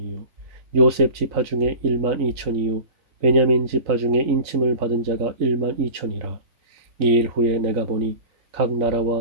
요셉 지파 중에 1만 2천이요 베냐민 지파 중에 인침을 받은 자가 1만 2천이라. 이 일 후에 내가 보니 각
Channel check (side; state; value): left; late; 3.9 ms